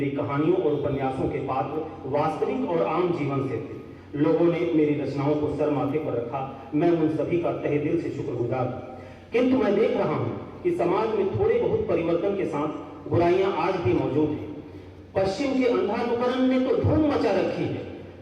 कहानियों और उपन्यासों के पात्र वास्तविक और आम जीवन से थे। लोगों ने मेरी रचनाओं को सर माथे पर रखा। मैं उन सभी का तहे दिल से शुक्रगुजार हूं। किंतु मैं देख रहा हूं कि समाज में थोड़े बहुत परिवर्तन के साथ बुराइयां आज भी मौजूद हैं। पश्चिम के अंधानुकरण ने तो धूम मचा रखी है।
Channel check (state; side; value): identical; both; correlation 1.00